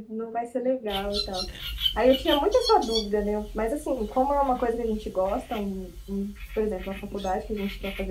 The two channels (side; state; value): both; identical; correlation 1.00